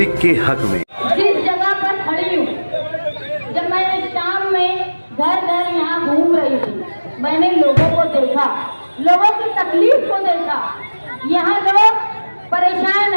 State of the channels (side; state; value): both; inverted; correlation -1.00